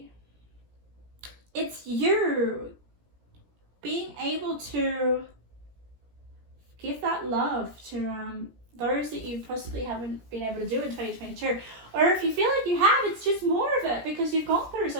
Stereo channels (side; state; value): left; late; 17 ms